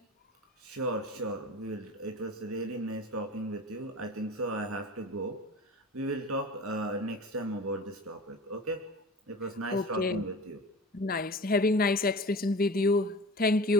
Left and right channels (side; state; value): both; normal; correlation 0.36